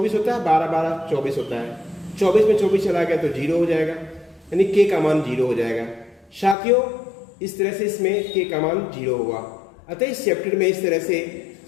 होता है, 12 12 24 होता है, 24 में 24 चला गया तो 0 हो जाएगा, यानी k का मान 0 हो जाएगा। साथियों, इस तरह से इसमें k का मान 0 हुआ। अतः इस चैप्टर में इस तरह से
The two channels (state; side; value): drops out; right; at 6.6 s